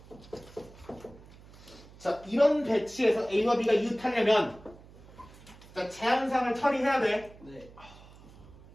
자, 이런 배치에서 A와 B가 이웃하려면 자, 제한사항을 처리해야 돼. 네.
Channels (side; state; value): right; noise; hum, 21 dB below the sound